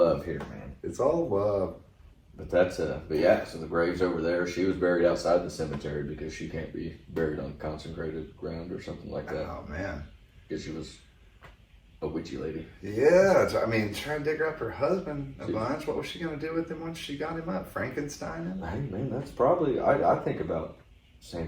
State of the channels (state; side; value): identical; both; correlation 1.00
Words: here, man. It's all love. But so the grave's over there. She was buried outside the cemetery because she can't be buried on consecrated ground or something like that. Oh, man. Because she was a witchy lady. Yeah, I mean, trying to dig up her husband a bunch. What was she going to do with him once she got him up? Frankenstein him? Hey, man, that's probably, I think about